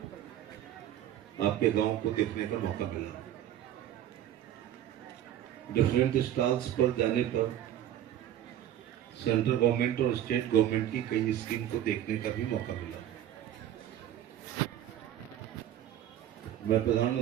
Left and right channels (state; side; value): quieter; left; 11.5 dB